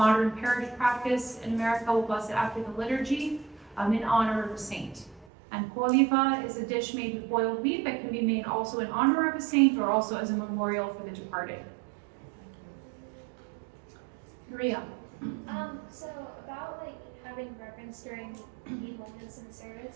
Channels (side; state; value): left; drops out; at 5.2 s